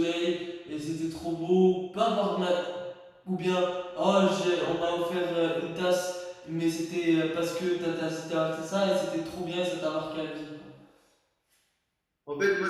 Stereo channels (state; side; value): identical; both; correlation 1.00